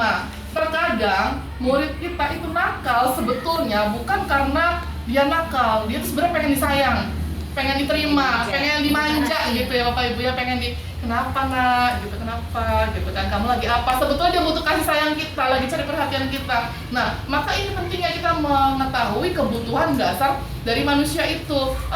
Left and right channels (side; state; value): both; identical; correlation 1.00